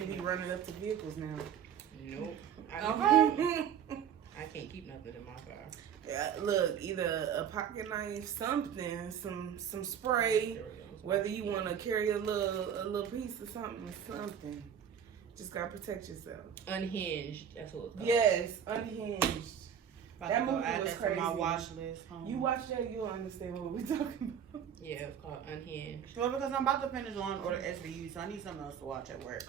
be running up to vehicles now. Nope. Okay. I can't keep nothing in my car. Yeah, look, either a pocket knife, something, some spray. Whether you want to carry a little piece of something. Just gotta protect yourself. Unhinged. That's what it's called. Yes, Unhinged. About That to go movie add was that to my crazy. watch list. You watch that, you'll understand what we're talking about. Yeah, it's called Unhinged. Well, because I'm about to finish Law and Order SVU, so I need something else to watch at work.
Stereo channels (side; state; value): left; quieter; 8.5 dB